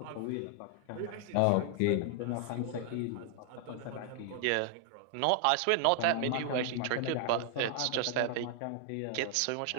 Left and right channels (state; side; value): different; both; correlation 0.00